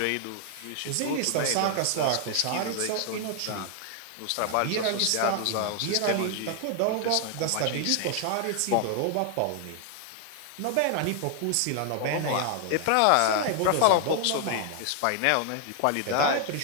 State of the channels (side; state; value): both; different; correlation 0.00